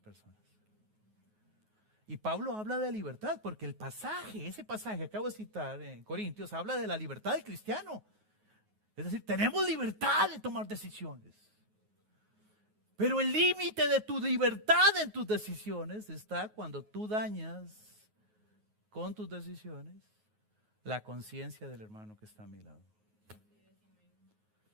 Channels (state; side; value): late; left; 9.4 ms